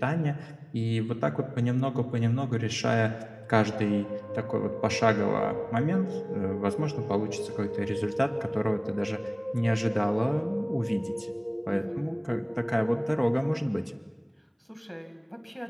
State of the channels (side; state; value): both; identical; correlation 1.00